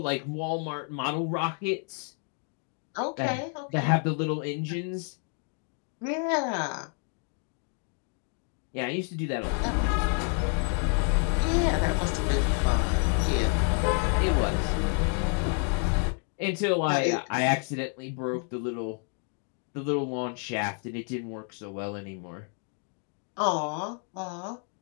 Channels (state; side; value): quieter; right; 38.8 dB